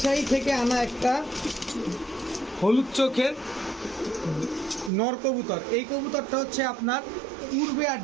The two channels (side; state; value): left; drops out; at 4.9 s